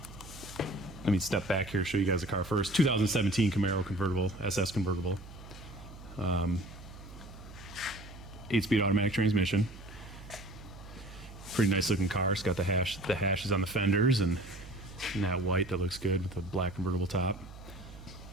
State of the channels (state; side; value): noise; right; hum, 16 dB below the sound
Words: let me step back here, show you guys the car first. 2017 Camaro convertible, SS convertible. 8-speed automatic transmission. Pretty nice looking car. It's got the hashes on the fenders and that white that looks good with the black convertible top.